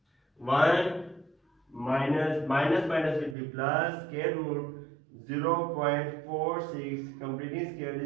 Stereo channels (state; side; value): drops out; left; at 3.4 s